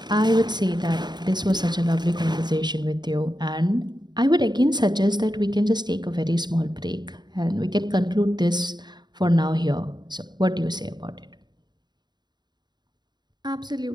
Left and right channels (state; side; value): late; left; 0.21 ms